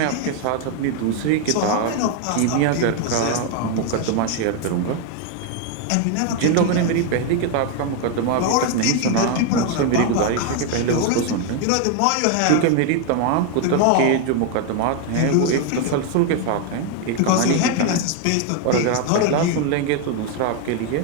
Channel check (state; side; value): different; both; correlation 0.01